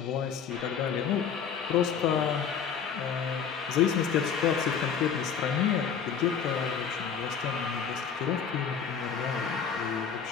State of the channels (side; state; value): right; quieter; 7.0 dB